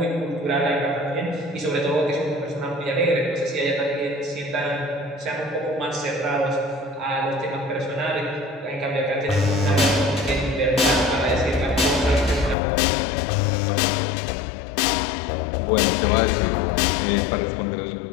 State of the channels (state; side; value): drops out; right; at 12.6 s